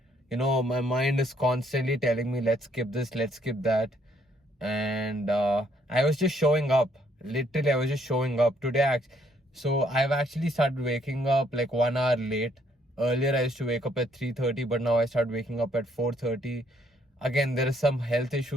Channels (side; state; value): both; normal; correlation 0.68